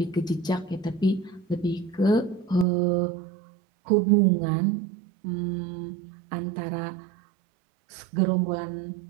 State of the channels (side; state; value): left; drops out; at 2.7 s